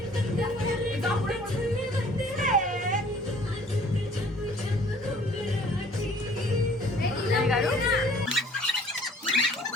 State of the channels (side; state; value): both; normal; correlation 0.55